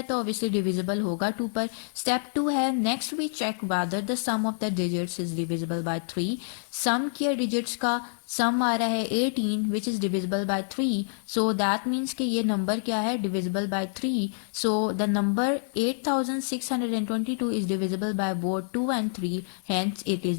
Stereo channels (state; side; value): silent; right; digital silence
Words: तो ऑब्वियसली डिविजिबल होगा 2 पर। स्टेप 2 है, next we check whether the sum of the digits is divisible by 3। Sum किया डिजिट्स का, सम आ रहा है 18 which is divisible by 3, so that means कि ये नंबर क्या है, divisible by 3। So the number 8622 is divisible by both 2 and 3, hence it is